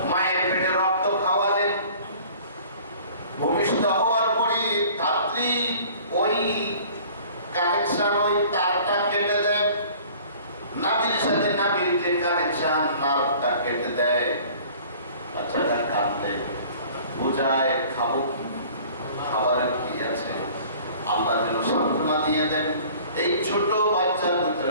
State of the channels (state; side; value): inverted; both; correlation -0.49